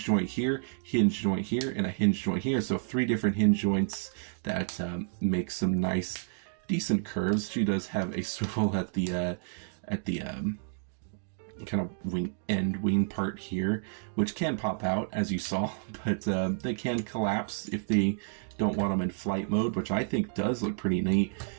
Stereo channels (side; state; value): left; silent; digital silence